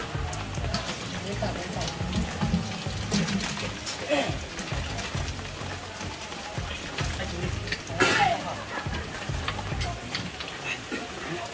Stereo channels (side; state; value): both; identical; correlation 1.00